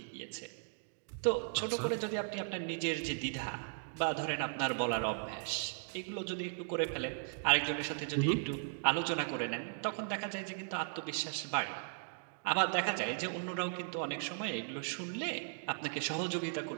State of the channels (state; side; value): silent; left; digital silence